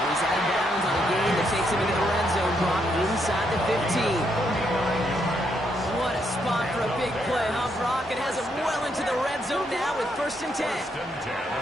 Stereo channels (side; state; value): both; normal; correlation 0.76